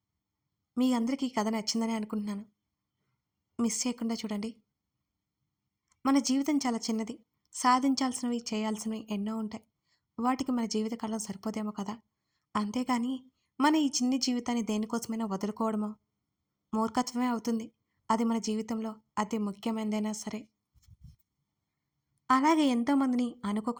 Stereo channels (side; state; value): both; identical; correlation 1.00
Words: మీ అందరికీ ఈ కథ నచ్చిందని అనుకుంటున్నాను. మిస్ చేయకుండా చూడండి. మన జీవితం చాలా చిన్నది. సాధించాల్సినవి చేయాల్సినవి ఎన్నో ఉంటాయి. వాటికి మన జీవితకాలం సరిపోదేమో కదా. అంతేగాని మన ఈ చిన్ని జీవితాన్ని దేనికోసమైనా వదులుకోవడమో మూర్ఖత్వమే అవుతుంది. అది మన జీవితంలో అతి ముఖ్యమైనదైనా సరే. అలాగే ఎంతోమందిని